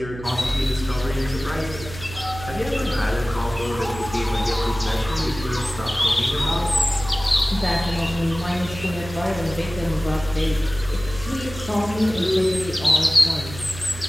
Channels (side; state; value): right; noise; hum, 12 dB below the sound